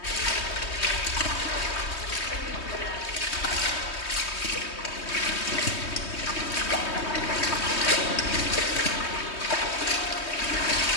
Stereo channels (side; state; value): right; late; 3.2 ms